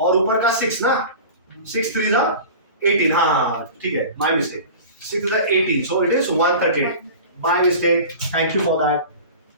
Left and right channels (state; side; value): inverted; both; correlation -0.36